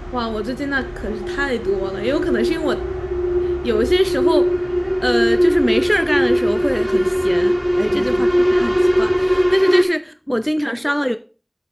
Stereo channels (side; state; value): both; identical; correlation 1.00